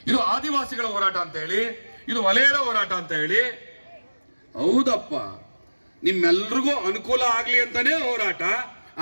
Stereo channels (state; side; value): inverted; both; correlation -1.00